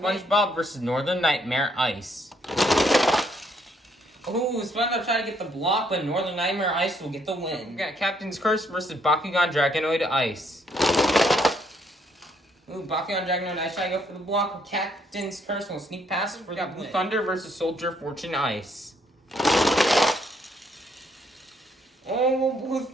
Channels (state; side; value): normal; both; correlation 0.70